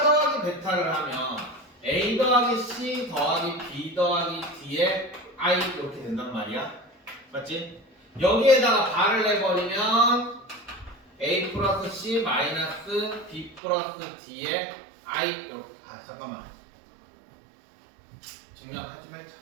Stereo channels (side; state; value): left; drops out; at 13.6 s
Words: 베타를 하면 a 더하기 c 더하기 b 더하기 d의 i 이렇게 된단 말이야. 맞지? 여기에다가 발을 내버리면 a 플러스 c 마이너스 b 플러스 d의 i 이렇게. 잠깐만. 증명하지 말자.